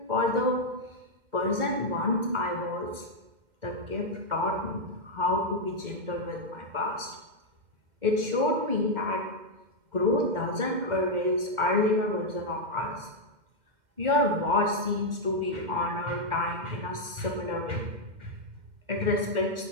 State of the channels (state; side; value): late; left; 2.1 ms